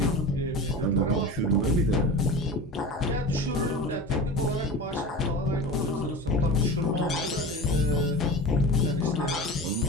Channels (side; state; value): both; normal; correlation 0.30